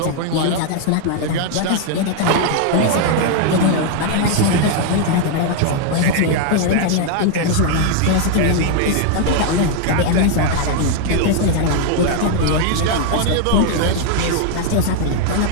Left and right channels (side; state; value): both; different; correlation 0.00